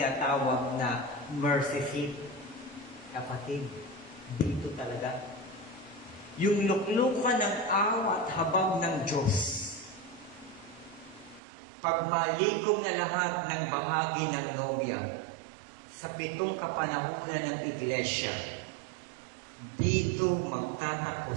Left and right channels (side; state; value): left; drops out; at 11.4 s